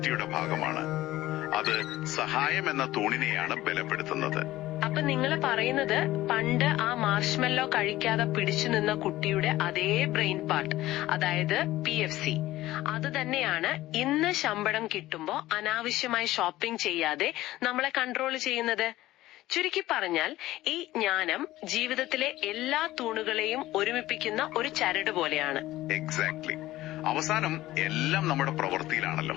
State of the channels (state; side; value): quieter; right; 16.2 dB